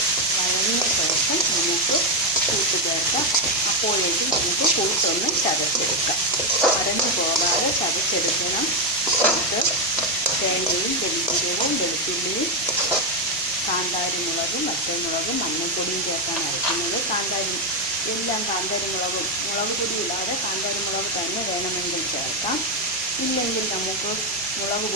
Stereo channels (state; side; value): normal; both; correlation 0.05